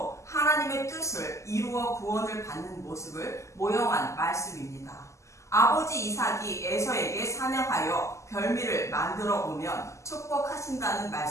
하나님의 뜻을 이루어 구원을 받는 모습을 모형한 말씀입니다. 아버지 이삭이 에서에게 사냥하여 별미를 만들어 오면 축복하신다는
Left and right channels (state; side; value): late; right; 0.14 ms